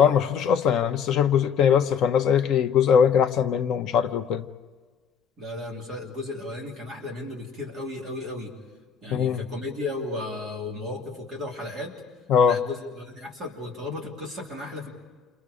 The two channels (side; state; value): right; quieter; 7.0 dB